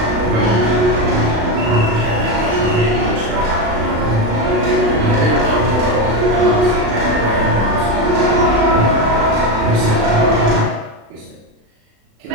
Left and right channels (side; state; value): left; late; 36 ms